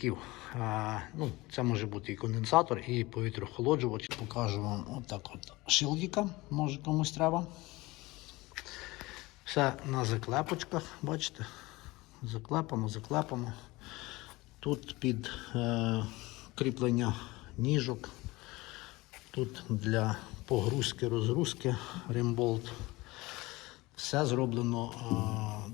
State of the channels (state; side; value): quieter; right; 21.1 dB